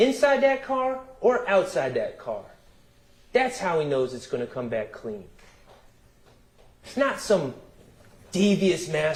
that car or outside that car. That's how he knows it's going to come back clean. It's not some devious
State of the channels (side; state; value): both; identical; correlation 1.00